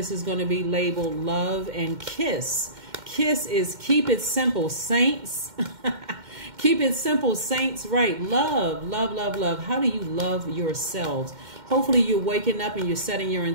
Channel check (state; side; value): late; left; 2.1 ms